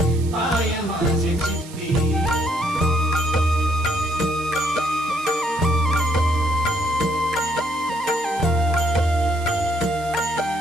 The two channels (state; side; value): noise; right; hiss, 18 dB below the sound